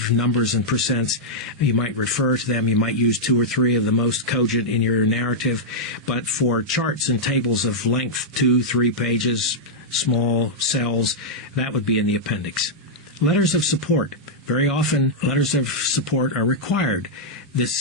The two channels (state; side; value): normal; both; correlation -0.07